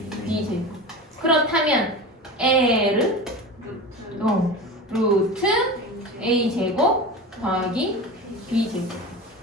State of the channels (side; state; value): both; normal; correlation 0.29